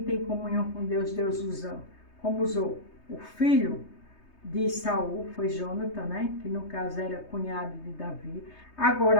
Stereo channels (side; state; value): right; late; 3.2 ms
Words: tem comunhão com Deus, Deus usa, como usou o filho de Saul, foi Jonatã, né? Que no caso era cunhado de Davi.